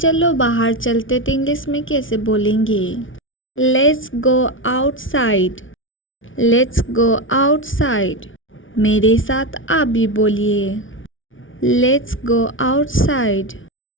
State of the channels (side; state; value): right; late; 0.57 ms